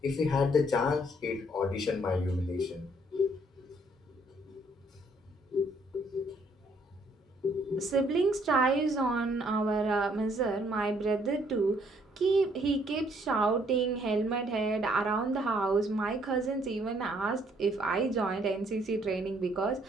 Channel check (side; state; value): both; normal; correlation 0.66